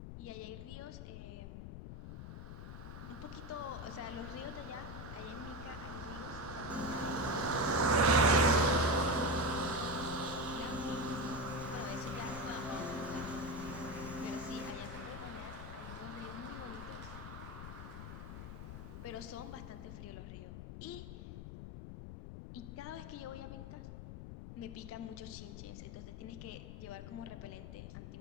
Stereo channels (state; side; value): noise; left; rumble, 9 dB below the sound